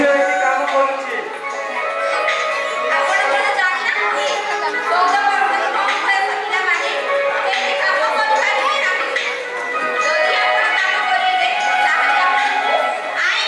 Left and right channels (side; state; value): both; identical; correlation 1.00